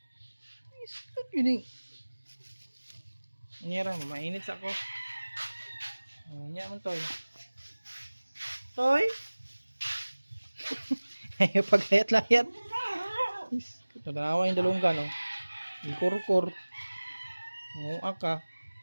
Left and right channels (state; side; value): inverted; both; correlation -1.00